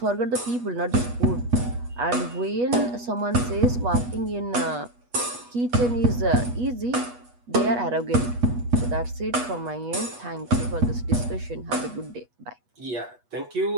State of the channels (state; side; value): late; left; 8.2 ms